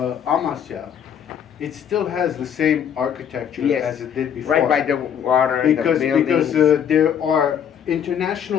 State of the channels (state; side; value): quieter; right; 8.7 dB